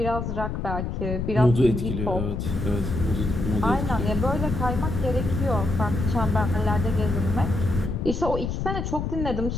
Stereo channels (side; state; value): left; noise; rumble, 3 dB below the sound